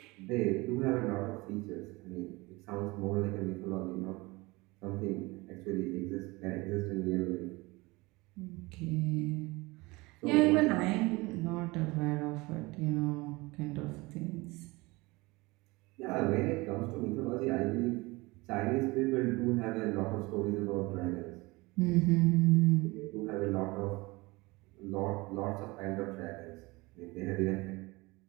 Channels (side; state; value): left; quieter; 23.3 dB